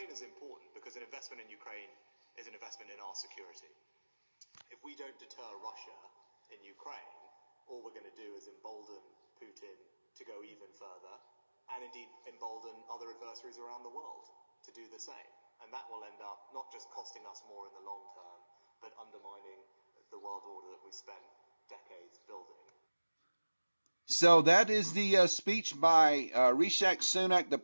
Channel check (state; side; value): inverted; both; correlation -1.00